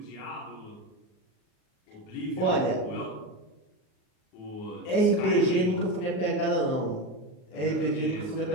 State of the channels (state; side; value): late; right; 39 ms